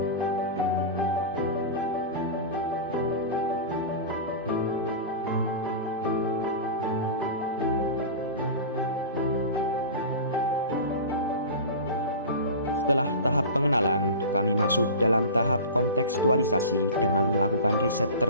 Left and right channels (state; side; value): inverted; both; correlation -0.31